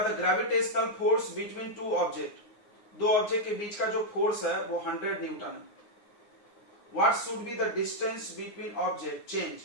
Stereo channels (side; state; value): right; late; 9.6 ms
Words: the gravitational force between two object. दो ऑब्जेक्ट के बीच का जो फोर्स है वो 100 न्यूटन है। What should be the distance between object change